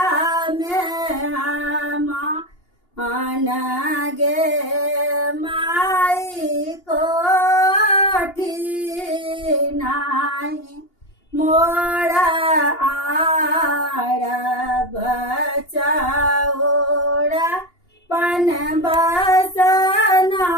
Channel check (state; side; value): late; right; 2.8 ms